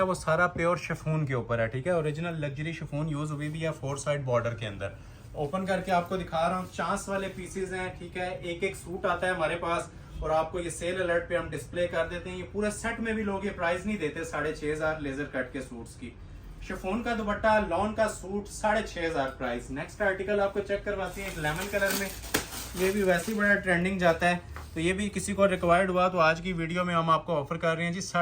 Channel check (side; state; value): both; identical; correlation 1.00